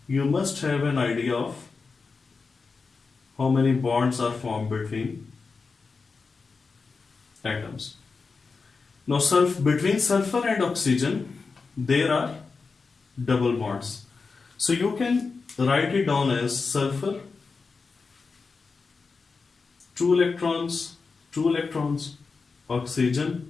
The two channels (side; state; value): right; quieter; 4.6 dB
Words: you must have an idea of how many bonds are formed between atoms. Now between sulfur and oxygen, there are double bonds. So you can write it down as sulfur, 2 electrons, oxygen,